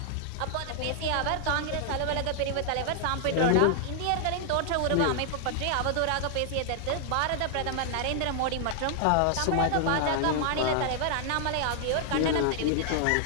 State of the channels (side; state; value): both; different; correlation 0.00